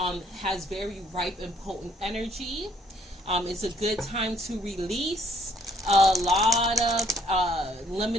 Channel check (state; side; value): normal; both; correlation 0.64